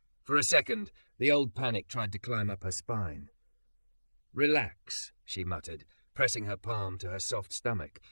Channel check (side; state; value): both; inverted; correlation -1.00